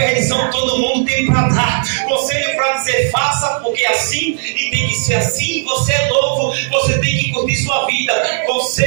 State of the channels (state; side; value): silent; left; digital silence